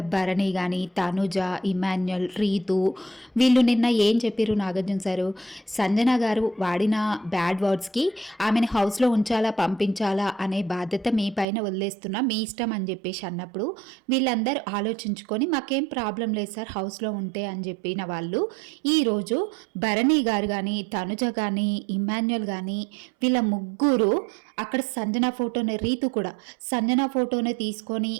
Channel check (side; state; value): left; drops out; at 11.5 s